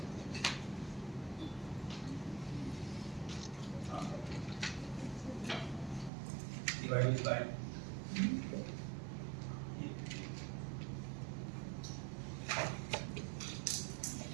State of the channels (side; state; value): left; drops out; at 6.1 s